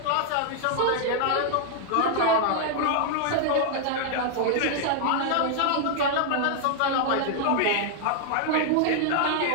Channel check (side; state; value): both; different; correlation 0.00